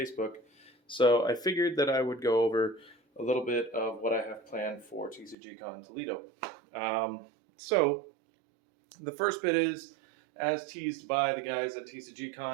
So I figured that I would go over a little bit of what I have planned for TCGCON Toledo. So the first bit is, as teased by the guys at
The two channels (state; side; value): drops out; left; at 5.4 s